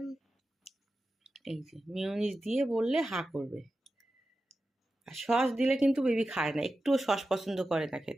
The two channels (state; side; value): normal; both; correlation 0.92